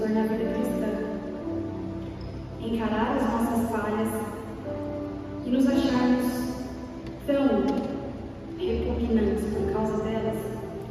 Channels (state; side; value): identical; both; correlation 1.00